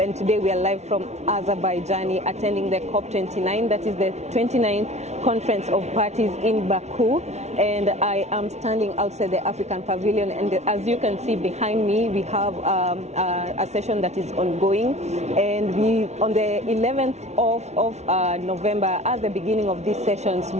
today we are live from Azerbaijan, attending the COP29, that is the 29th Conference of Parties in Baku. And I am standing outside the African Pavilion, and as you can see behind me, we have a session that is ongoing. And we, on the 11th of November, at the beginning of these sessions,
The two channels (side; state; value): left; late; 0.32 ms